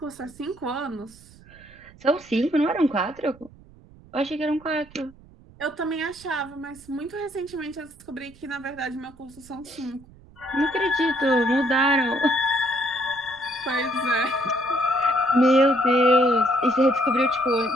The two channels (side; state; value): right; noise; rumble, 24 dB below the sound